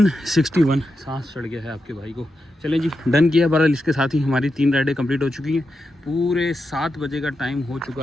सांस चढ़ गया है आपके भाई को। चलें जी, डन किया। बहरहाल इसके साथ ही हमारी 3 राइडें कंप्लीट हो चुकी हैं। पूरे 7 बजे का टाइम हो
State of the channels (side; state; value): both; normal; correlation 0.88